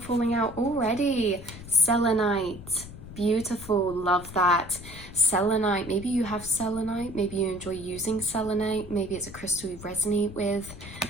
out already. Selenite. Beautiful, love that. Selenite, maybe you have selenite, maybe you enjoy using selenite, maybe it's a crystal you resonate with.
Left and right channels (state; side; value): noise; left; rumble, 14 dB below the sound